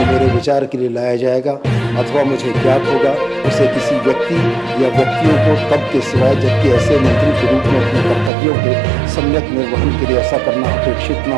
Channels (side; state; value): left; drops out; at 8.3 s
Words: मेरे विचार के लिए लाया जाएगा अथवा मुझे ज्ञात होगा उसे किसी व्यक्ति या व्यक्तियों को तब के सिवाय जबकि ऐसे मंत्री के रूप में अपने कर्तव्यों के सम्यक निर्वहन के लिए ऐसा करना अपेक्षित